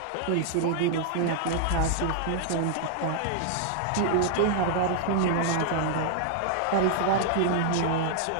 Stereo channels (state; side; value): different; both; correlation -0.01